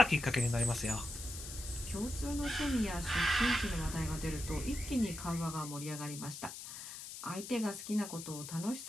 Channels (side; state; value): left; noise; hiss, 10 dB below the sound